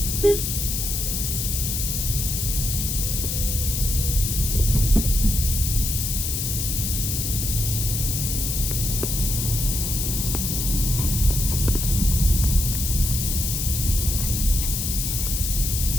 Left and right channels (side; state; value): left; noise; hiss, 1 dB below the sound